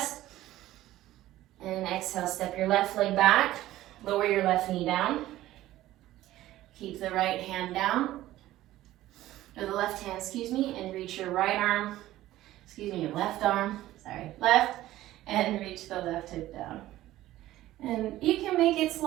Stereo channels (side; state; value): left; quieter; 15.1 dB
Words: And exhale, step your left leg back. Lower your left knee down. Keep the right hand down. Or the left hand, and reach your right arm. Your left arm. Left. And reach the left hip down. And you can make it